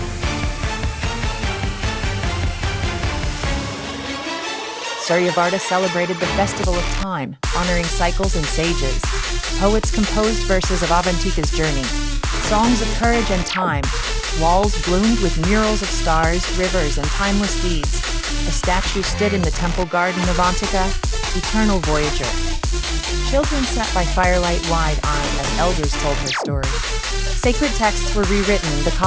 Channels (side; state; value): both; identical; correlation 1.00